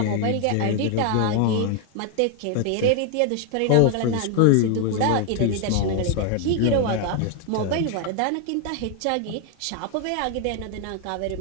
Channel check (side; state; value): both; different; correlation 0.01